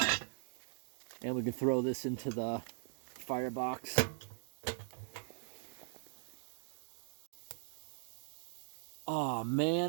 And we can throw this into the firebox. Oh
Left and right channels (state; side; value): silent; left; digital silence